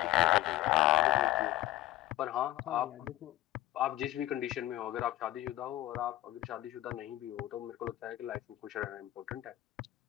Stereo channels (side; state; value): right; quieter; 15.6 dB